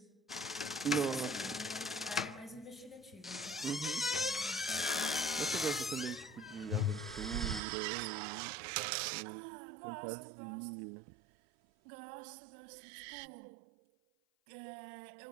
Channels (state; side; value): drops out; left; at 7.6 s